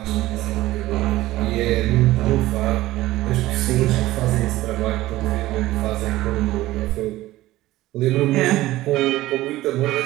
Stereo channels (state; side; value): quieter; left; 16.6 dB